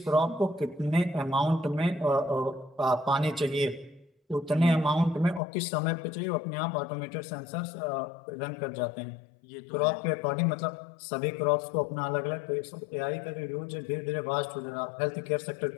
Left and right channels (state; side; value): drops out; right; at 5.4 s